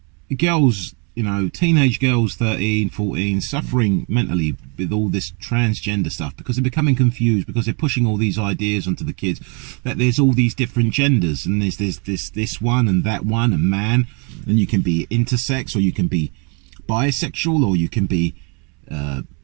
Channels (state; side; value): quieter; left; 34.4 dB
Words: girls, teenage girls, 13, 14, suffering mentally with all this transgender stuff because they're becoming confused, because they're pushing all these ideas onto the kids that there's all these different genders, and there's this one and that one, and man, and you can be intersex, or you can be bisexual, or you can be